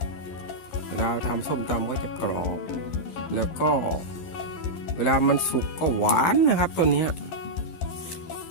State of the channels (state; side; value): late; right; 11 ms